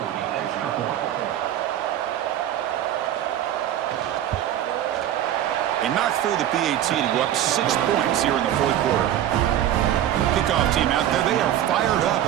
They knocked through the PAT to go up 6 points here in the 4th quarter. Kickoff team out there. They are fired up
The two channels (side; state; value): left; quieter; 11.6 dB